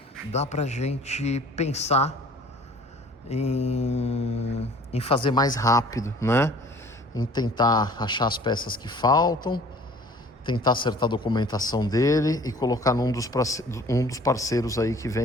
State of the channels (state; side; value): normal; both; correlation 0.51